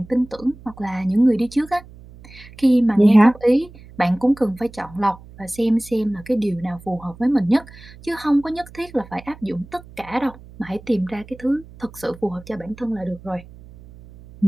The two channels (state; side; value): noise; right; hum, 20 dB below the sound